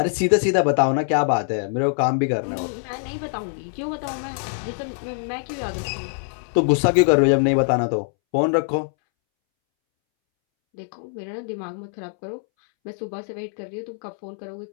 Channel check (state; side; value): silent; right; 63 dB below the other